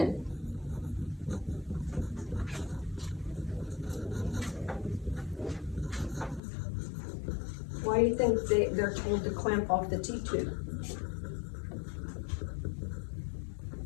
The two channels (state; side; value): drops out; right; at 6.4 s